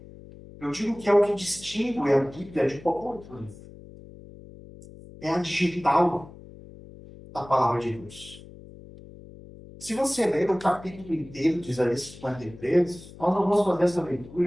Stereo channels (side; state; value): left; noise; hum, 18 dB below the sound